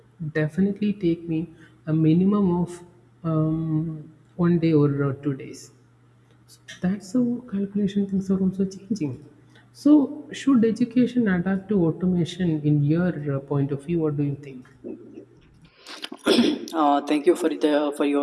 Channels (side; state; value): both; identical; correlation 1.00